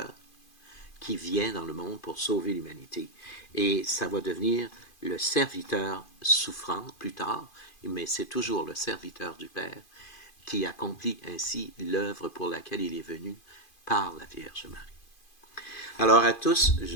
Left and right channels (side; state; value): right; late; 2.5 ms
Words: qui vient dans le monde pour sauver l'humanité. Et ça va devenir le serviteur souffrant plus tard, mais c'est toujours le serviteur du Père qui accomplit ainsi l'œuvre pour laquelle il est venu par la Vierge Marie. Alors à tous,